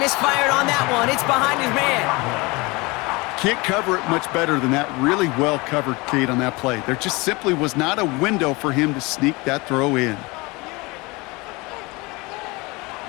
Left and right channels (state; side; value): quieter; right; 24.8 dB